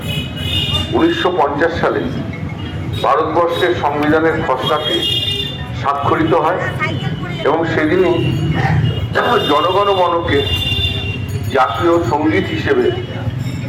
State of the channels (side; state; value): both; identical; correlation 1.00